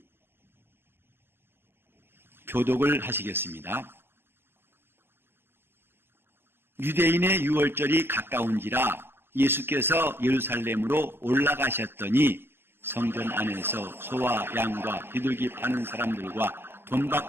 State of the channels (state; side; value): late; left; 0.10 ms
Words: 교독을 하시겠습니다. 유대인의 유월절이 가까운지라 예수께서 예루살렘으로 올라가셨더니 성전 안에서 소와 양과 비둘기 파는 사람들과 돈